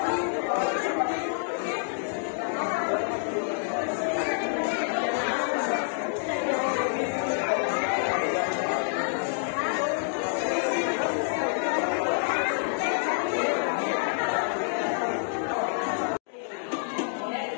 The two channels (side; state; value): right; silent; digital silence